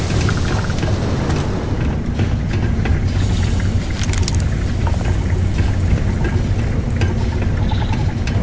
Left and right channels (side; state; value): both; identical; correlation 1.00